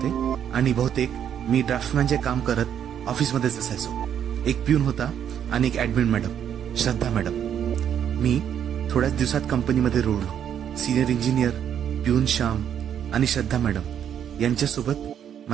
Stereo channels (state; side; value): quieter; left; 9.2 dB